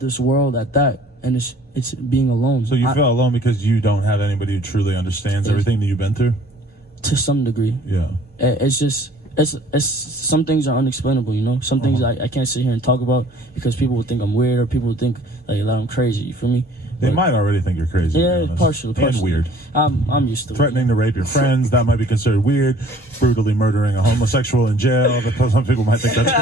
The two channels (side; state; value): both; normal; correlation 0.54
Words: this world at that. And it's being alone. So you feel alone because you don't have anybody who truly understands everything that you've been through? To some degree. Yeah. It's just it's some things are unexplainable, you know. Some things I can't sit here and talk about because people would think I'm weird or people would think like that I'm crazy. You feel me? They might already think you're crazy. Yeah, to be honest. partially. And weird. I'm used to it. Threatening to rape your friends, that might be considered weird. Brutally murdering a homosexual in jail, but some people might think that's